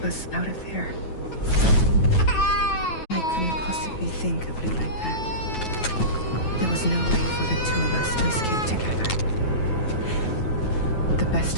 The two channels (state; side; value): late; right; 9.2 ms